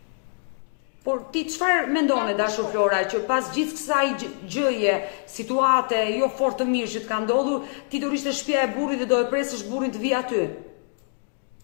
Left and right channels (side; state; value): right; silent; 62 dB below the other